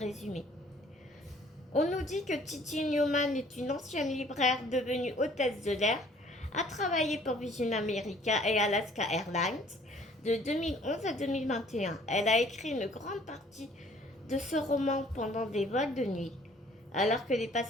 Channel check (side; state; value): both; normal; correlation 0.56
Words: On nous dit que Titi Newman est une ancienne libraire devenue hôtesse de l'air, a travaillé pour Virgin America et Alaska Airlines de 2011 à 2021. Elle a écrit une grande partie de ce roman pendant des vols de nuit, alors que les